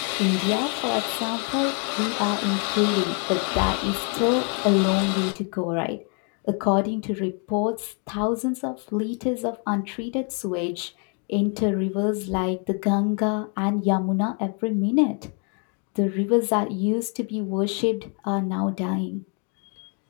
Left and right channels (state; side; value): quieter; right; 39.2 dB